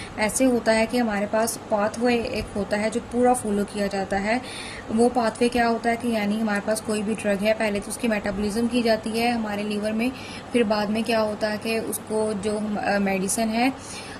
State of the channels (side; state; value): both; identical; correlation 1.00